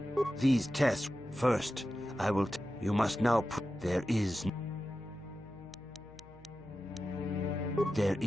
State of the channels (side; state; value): left; noise; hum, 22 dB below the sound